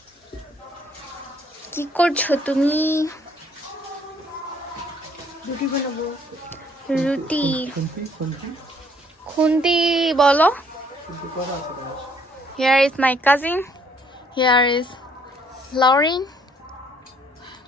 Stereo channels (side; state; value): both; normal; correlation 0.64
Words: কি করছো তুমি? রুটি বানাবো। রুটি খুন্তি বলো। Here is my cousin. Here is Lauren.